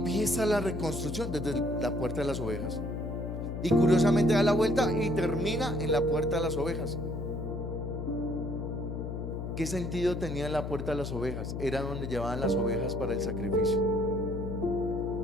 la reconstrucción desde la puerta de las ovejas. Y curiosamente da la vuelta y termina en la puerta de las ovejas. ¿Qué sentido tenía la puerta de las ovejas? Era donde llevaban las ovejas para el sacrificio.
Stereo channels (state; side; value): noise; left; hum, 5 dB below the sound